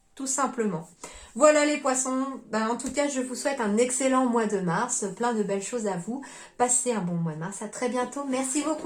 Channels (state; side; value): identical; both; correlation 1.00